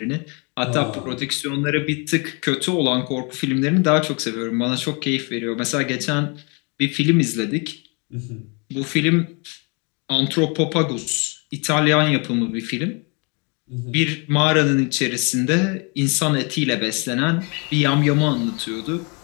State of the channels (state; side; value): quieter; right; 32.9 dB